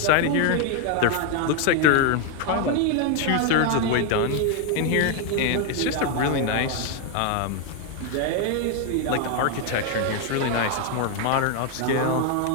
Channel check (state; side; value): different; both; correlation 0.01